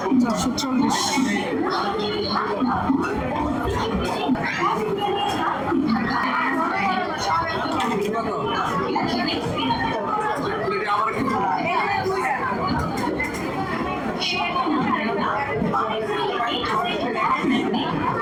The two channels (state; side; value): identical; both; correlation 1.00